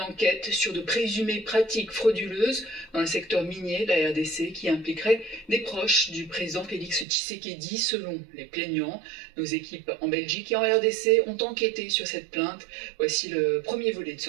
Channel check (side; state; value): left; drops out; at 7.1 s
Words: enquête sur de présumées pratiques frauduleuses dans le secteur minier de la RDC qui impliquerait des proches du président Félix Tshisekedi, selon les plaignants. Nos équipes en Belgique et en RDC ont enquêté sur cette plainte. Voici le premier volet de